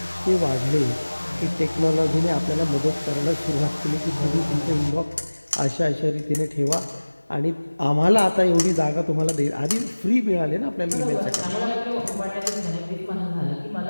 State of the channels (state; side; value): inverted; both; correlation -1.00